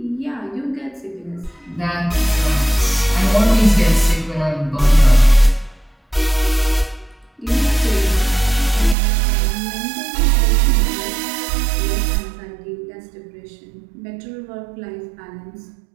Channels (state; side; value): drops out; left; at 9.0 s